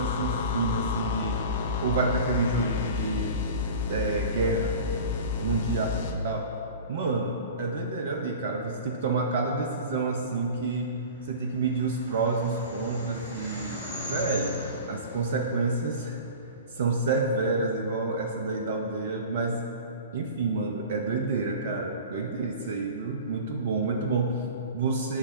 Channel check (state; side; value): inverted; both; correlation -0.37